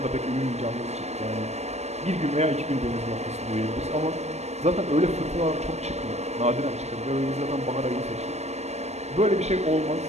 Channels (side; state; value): left; late; 0.32 ms